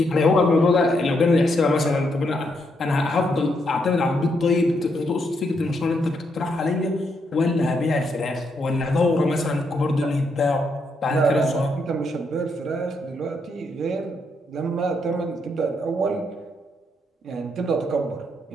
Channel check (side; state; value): both; normal; correlation 0.78